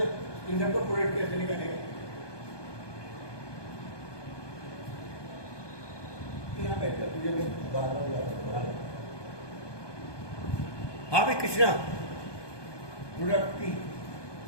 इन सबको प्रोडक्ट कैसे निकालेगा? यहाँ बैठकर तुझे बार हाँ भाई कृष्णा, प्रोडक्ट पी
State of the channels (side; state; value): right; late; 1.2 ms